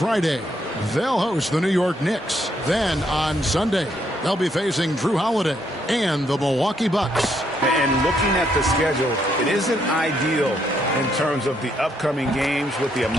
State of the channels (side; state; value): both; normal; correlation 0.74